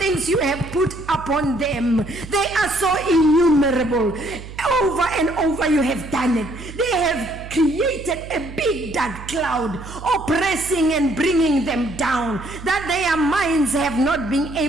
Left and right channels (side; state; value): right; noise; hum, 13 dB below the sound